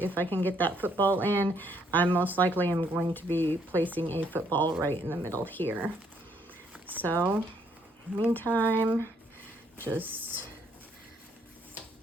I can get that football in, I most likely am going to be placing a football right in the middle here. So meantime, just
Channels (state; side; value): normal; both; correlation 0.69